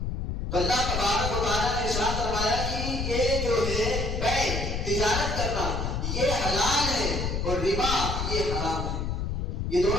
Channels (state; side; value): noise; left; rumble, 2 dB below the sound